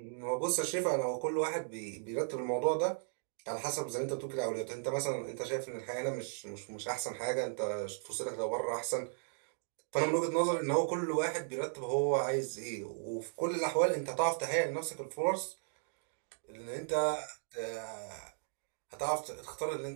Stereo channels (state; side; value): silent; left; digital silence